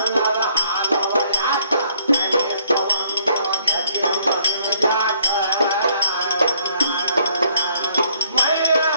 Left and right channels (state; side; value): inverted; both; correlation -0.65